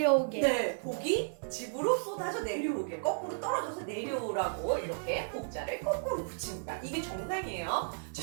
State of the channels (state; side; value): silent; left; 55 dB below the other